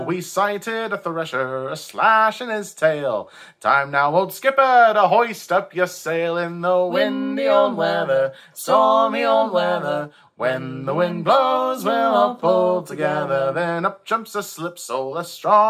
We sighted a thresher, a-slashin his tail. Time now, old skipper, to hoist up your sail in the windy old weather, stormy old weather. When the wind blows, we'll all pull together. Then up jumps a slipsole, as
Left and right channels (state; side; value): identical; both; correlation 1.00